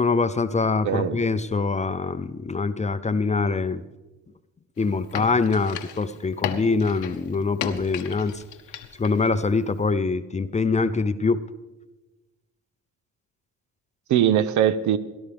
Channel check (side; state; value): both; normal; correlation 0.41